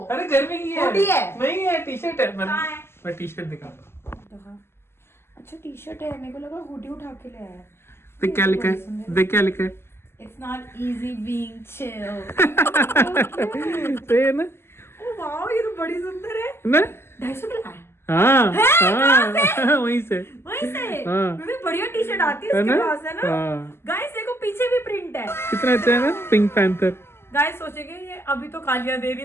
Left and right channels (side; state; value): right; late; 0.12 ms